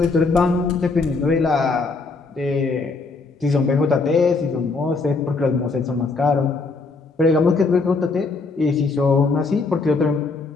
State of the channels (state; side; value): quieter; right; 4.0 dB